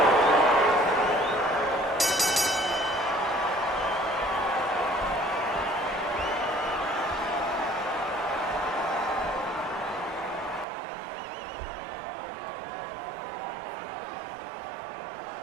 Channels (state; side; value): drops out; left; at 10.7 s